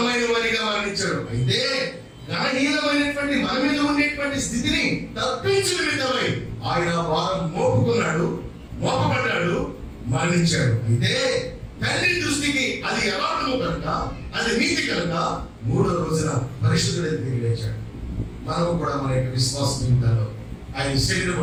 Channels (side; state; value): both; identical; correlation 1.00